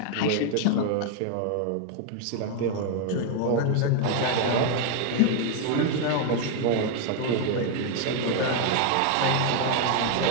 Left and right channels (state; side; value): different; both; correlation 0.01